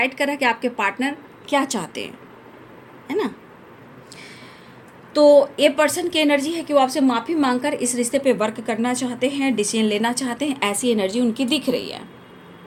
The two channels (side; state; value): both; identical; correlation 1.00